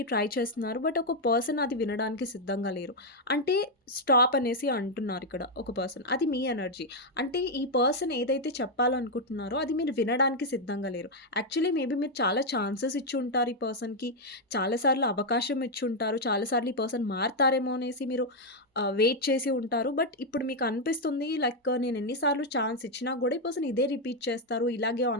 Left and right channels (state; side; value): normal; both; correlation 0.01